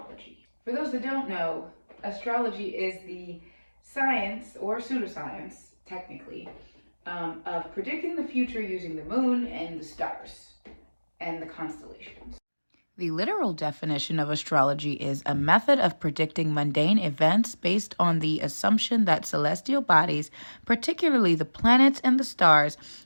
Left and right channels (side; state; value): both; inverted; correlation -1.00